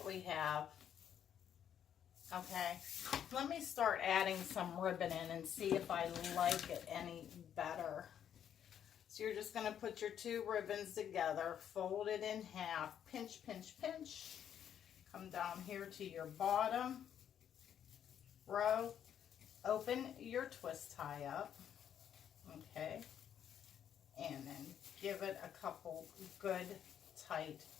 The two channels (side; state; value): right; quieter; 9.3 dB